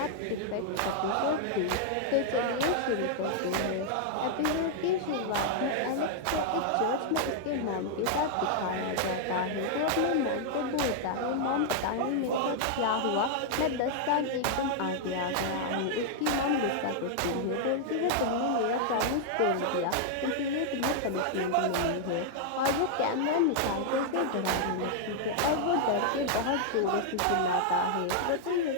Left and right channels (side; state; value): both; different; correlation -0.01